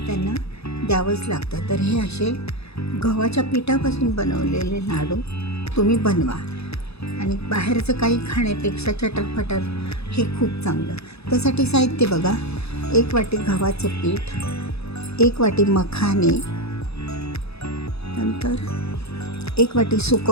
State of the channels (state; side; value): late; right; 0.79 ms